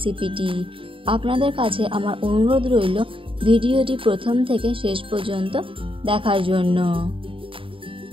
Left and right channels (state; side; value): late; left; 0.25 ms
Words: আপনাদের কাছে আমার অনুরোধ রইল ভিডিওটি প্রথম থেকে শেষ পর্যন্ত দেখার জন্য।